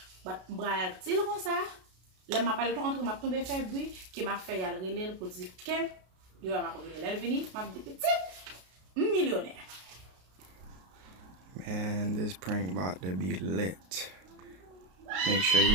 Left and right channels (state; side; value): late; left; 32 ms